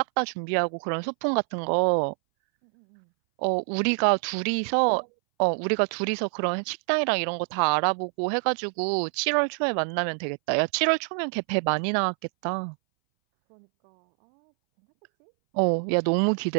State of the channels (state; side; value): silent; left; 61 dB below the other